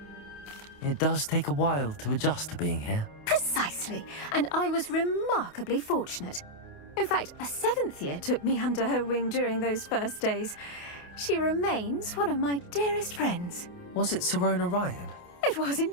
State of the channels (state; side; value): late; right; 28 ms